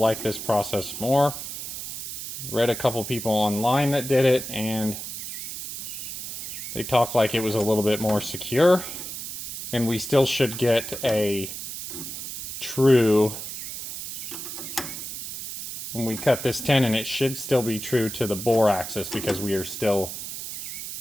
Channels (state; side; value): noise; right; hiss, 8 dB below the sound